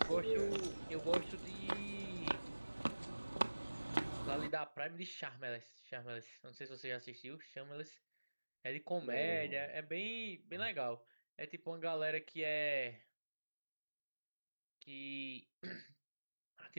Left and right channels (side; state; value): both; inverted; correlation -1.00